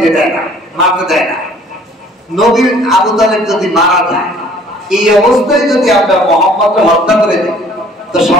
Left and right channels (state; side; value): normal; both; correlation 0.55